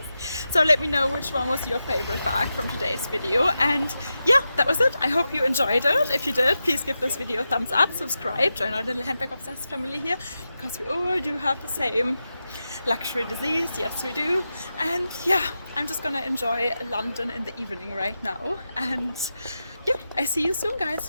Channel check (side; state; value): both; inverted; correlation -0.90